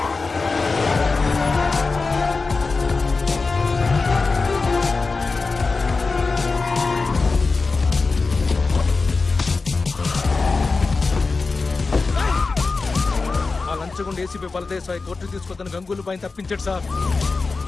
ACP బలదేశాయ్ కోర్టు తీసుకొద్దని గంగూలు పైన తప్పించాడు సార్.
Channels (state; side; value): quieter; right; 4.1 dB